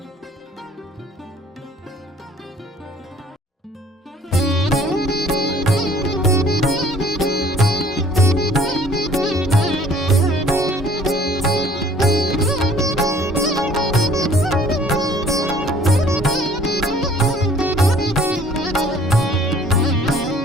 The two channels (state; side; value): normal; both; correlation 0.55